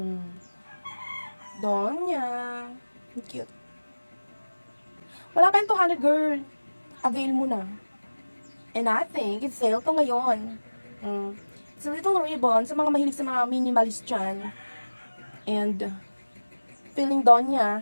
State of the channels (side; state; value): both; inverted; correlation -1.00